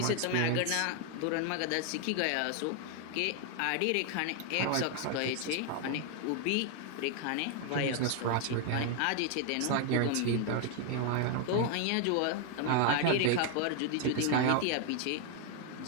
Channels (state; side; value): different; both; correlation 0.00